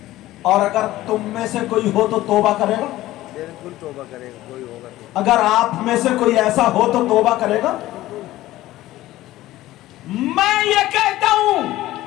اور اگر تم میں سے کوئی ہو تو توبہ کرے گا؟ बिल्कुल तौबा करेगा, कोई होगा तो। अगर आप में से कोई ऐसा हो तो तौबा करेगा। मैं ये कहता हूं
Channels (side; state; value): right; quieter; 16.0 dB